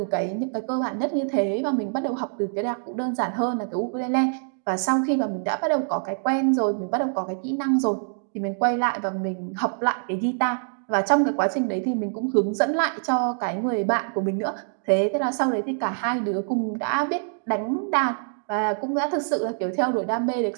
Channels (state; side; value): silent; left; digital silence